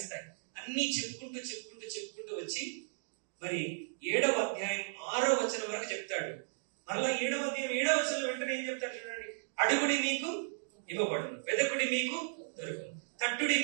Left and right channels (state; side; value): silent; left; digital silence